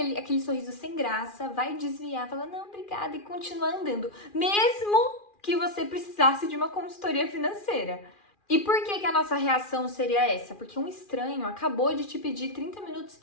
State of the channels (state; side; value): late; right; 2.4 ms